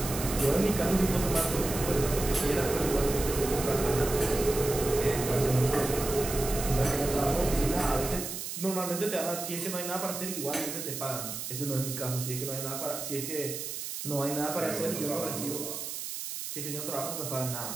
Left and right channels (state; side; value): noise; right; hiss, 6 dB below the sound